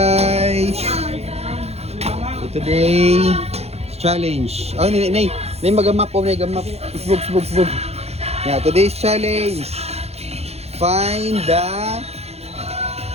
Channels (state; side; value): late; left; 0.30 ms